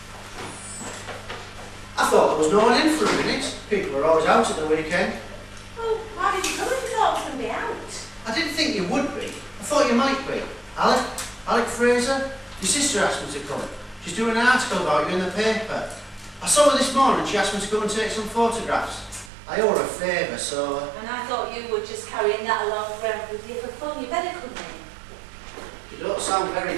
I thought there was no one in for a minute. People are always out at the weekend. thought you might be. Alec Fraser? Your sister asked me to come. She's doing an article about you in the paper. I saw her this morning. She asked me to go and take some photographs. I owe her a favour, so... And I thought you were just carrying that along forever with you for fun. You better come in. You don't sound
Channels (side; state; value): left; drops out; at 19.3 s